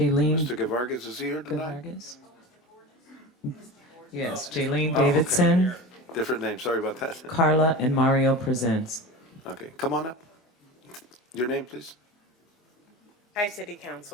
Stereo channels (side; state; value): both; normal; correlation 0.30